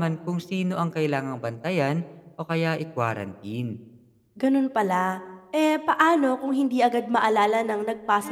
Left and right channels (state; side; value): identical; both; correlation 1.00